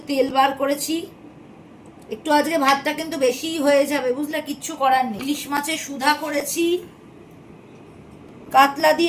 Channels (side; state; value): both; identical; correlation 1.00